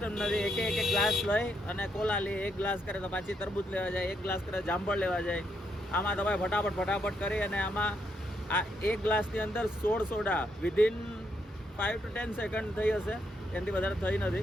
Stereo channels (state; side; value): normal; both; correlation 0.77